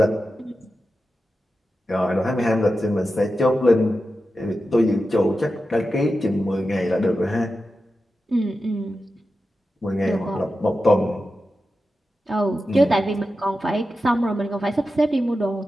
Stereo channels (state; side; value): normal; both; correlation 0.91